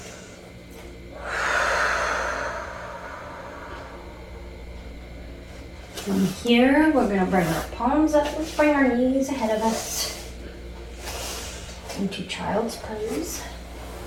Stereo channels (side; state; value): both; identical; correlation 1.00